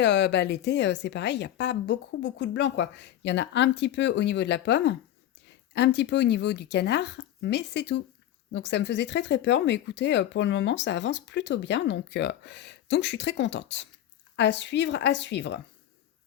l'été, c'est pareil, il n'y a pas beaucoup de blanc, quoi. Il y en a un petit peu au niveau de la pomme, un petit peu au niveau du canard, mais c'est tout. Donc ça me faisait très très peur, mais écoutez, pour le moment, ça avance plutôt bien, donc je suis très contente. À suivre, à suivre.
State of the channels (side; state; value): right; quieter; 11.9 dB